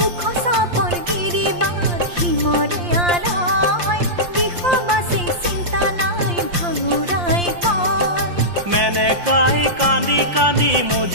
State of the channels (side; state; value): left; late; 5.7 ms